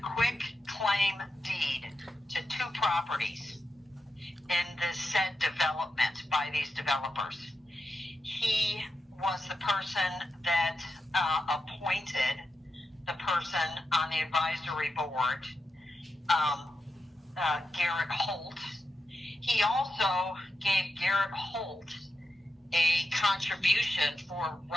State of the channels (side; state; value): both; normal; correlation 0.88